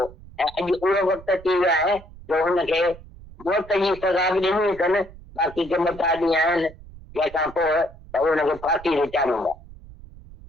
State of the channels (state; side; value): noise; right; rumble, 19 dB below the sound